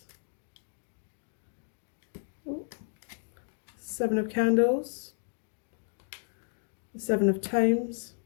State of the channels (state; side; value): silent; right; digital silence